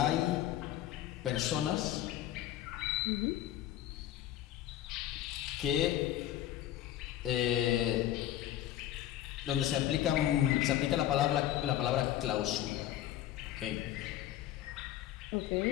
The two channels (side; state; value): right; quieter; 12.8 dB